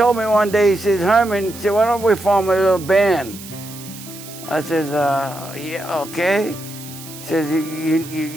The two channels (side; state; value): right; noise; hiss, 15 dB below the sound